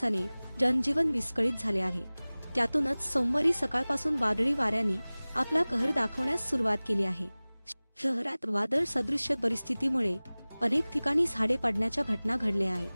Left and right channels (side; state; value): both; inverted; correlation -0.99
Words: जनजीवन विस्कळीत झाले आहे। त्यातूनच सोमवारी सकाळपासून वादळी वाऱ्यांनी आपला कहर दाखवण्यास सुरुवात केली आहे। शहरात वादळ सदृश्य परिस्थितीमुळे अनेक ठिकाणी झाडे पडण्याच्या घटना घडल्या